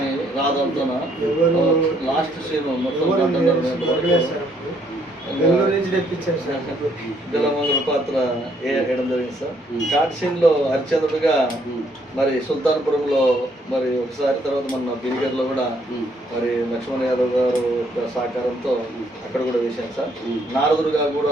రాధలతోన లాస్ట్ సీన్ మొత్తం బిలోమంగళ పాత్ర వేయడం జరిగింది సార్. ఘాట్ సీన్ లో హరిచంద్రుడుగా మరి సుల్తాన్పురంలో మరి ఒకసారి, తర్వాత మన బిరిగర్లో కూడా మరి లక్ష్మణ్ యాదవ్ గారు యొక్క సహకారంతో అక్కడ కూడా వేశాను సార్. నారదుడుగా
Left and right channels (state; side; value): normal; both; correlation 0.68